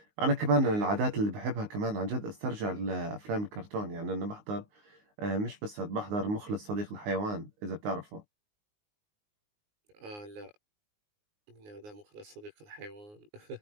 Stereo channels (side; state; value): left; late; 19 ms